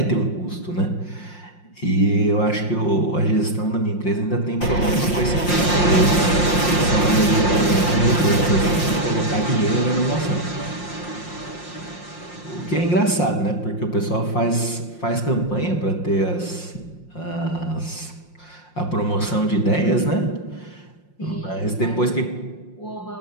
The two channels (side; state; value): right; late; 5.7 ms